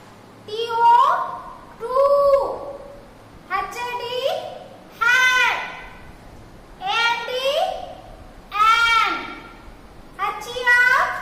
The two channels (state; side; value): identical; both; correlation 1.00